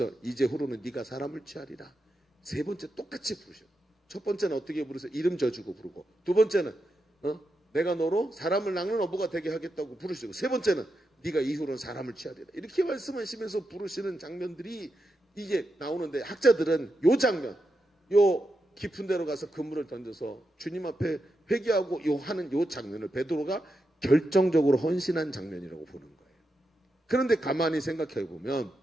이제후로는 네가 사람을 취하리라. 세 번째 똑같이 부르셔. 첫 번째는 어떻게 부르세요? 이름 져주고 부르고 두 번째는 내가 너로 사람을 낚는 어부가 되게 하겠다고 부르시고 세 번째는 네가 이후로는 사람을 취하리라. 이렇게 말씀하시면서 부르시는 장면들이 이게 나오는데 학자들은 요 장면 요 깊은 데로 가서 그물을 던져서 주님 앞에 회개하고 하는 요 장면을 베드로가 결정적으로 헌신한 장면이라고 보는 거예요. 그런데 가만히 생각해 보면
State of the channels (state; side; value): normal; both; correlation 0.87